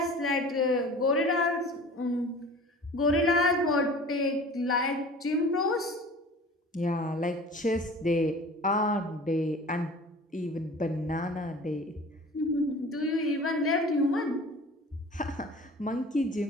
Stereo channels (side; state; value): both; normal; correlation 0.42